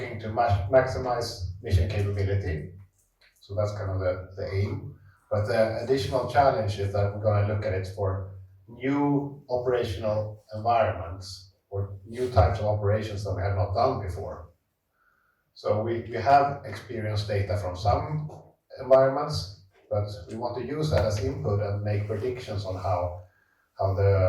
to maximize mission capability. So that's kind of the aim. But the additional challenge is that we're going to look at it for new operational environments or new types of operations that we have not done before. So we have experienced data from some environments, but we want to use that as input and make predictions on how how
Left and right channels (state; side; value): identical; both; correlation 1.00